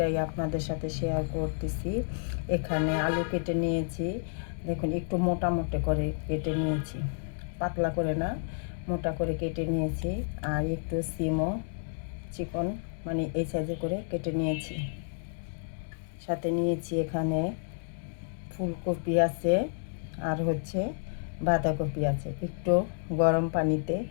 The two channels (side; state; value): right; silent; digital silence